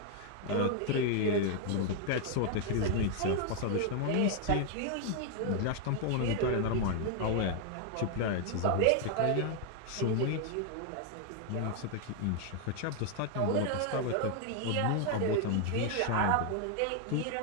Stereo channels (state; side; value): different; both; correlation 0.00